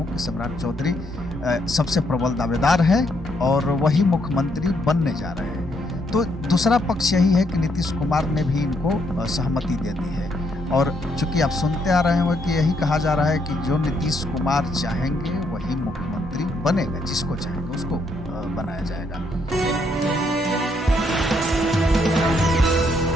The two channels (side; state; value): both; normal; correlation 0.74